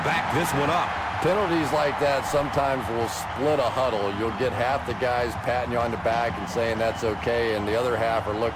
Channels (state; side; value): identical; both; correlation 1.00